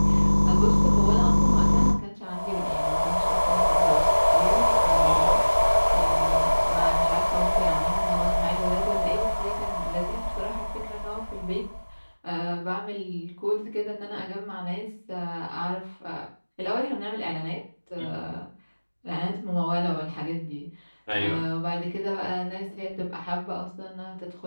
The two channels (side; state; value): both; inverted; correlation -1.00